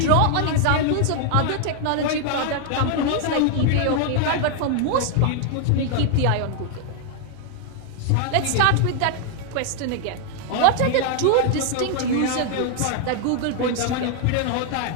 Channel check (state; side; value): different; both; correlation 0.00